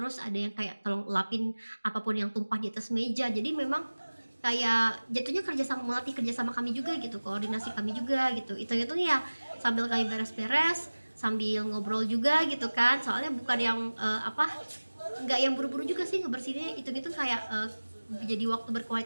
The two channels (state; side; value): inverted; both; correlation -1.00